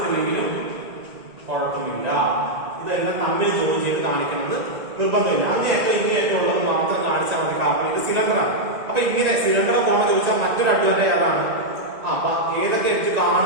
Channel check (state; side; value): late; left; 1.9 ms